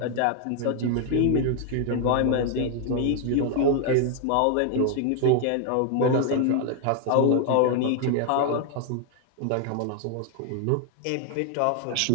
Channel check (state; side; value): different; both; correlation 0.00